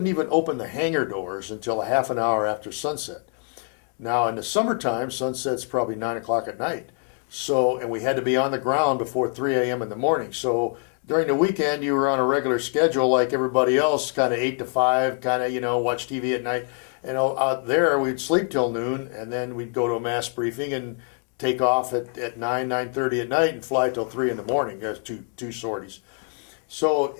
even open the hangar doors until a half an hour after sunset. Now, in the summertime, sunset's probably 9 o'clock at night. So, and we had to be on the ground before 3 a.m. in the morning. So during the weekend, you were on a regular schedule like everybody else, kind of 8 to 5, kind of, watch TV at night. And out there, we'd sleep till noon, and then we'd go to a mass briefing and take off at 9:30 at night and fly till 3 in the morning. There's two sorties. So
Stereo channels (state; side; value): quieter; right; 37.5 dB